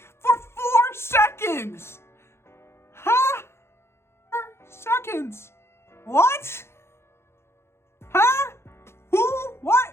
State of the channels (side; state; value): right; late; 0.12 ms